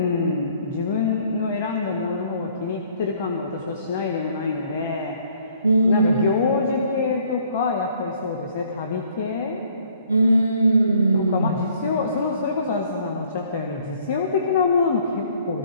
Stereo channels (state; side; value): inverted; both; correlation -0.61